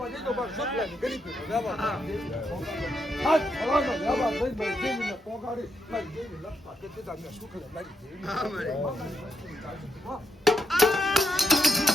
તો બસ સપલાની ગરીબ વ્યવહાર હાથ હવામાં વ્યવહાર થઈ મારી દેવીને પોગાડી મારી દેવી લપતા કે તે તમને સુખલે મારી દેવી હા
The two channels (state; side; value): normal; both; correlation 0.78